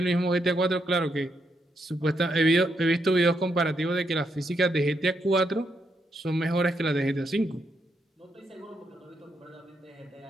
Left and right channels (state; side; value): normal; both; correlation 0.79